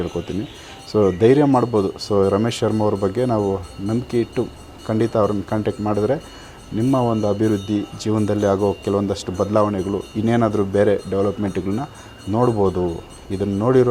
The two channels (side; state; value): both; identical; correlation 1.00